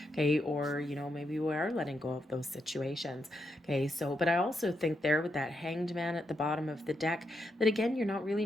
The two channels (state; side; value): normal; both; correlation 0.82